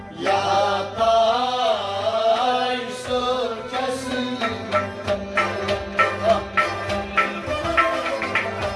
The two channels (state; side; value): identical; both; correlation 1.00